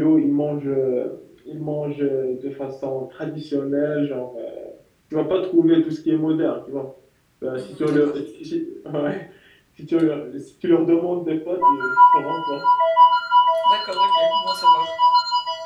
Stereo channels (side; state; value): both; identical; correlation 1.00